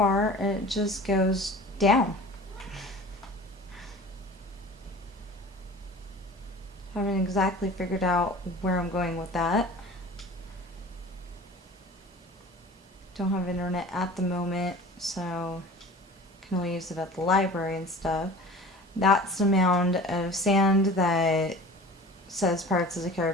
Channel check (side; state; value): both; normal; correlation 0.41